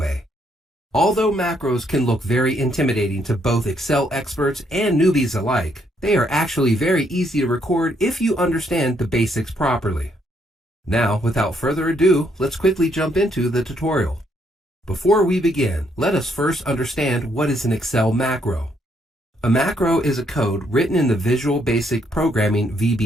Although macros can look very intimidating to both Excel experts and newbies alike, they are actually very easy to record if you understand the basics properly. Now, without further ado, let's quickly jump into the tutorial. Before we begin, let us first understand what is an Excel macro. A macro is a code written in the Visual Basic Programming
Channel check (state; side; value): normal; both; correlation 0.72